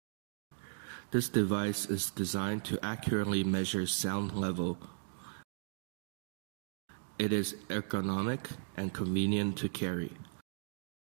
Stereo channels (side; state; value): left; silent; digital silence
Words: This device is designed to accurately measure sound level. It is ergonomic and convenient to carry.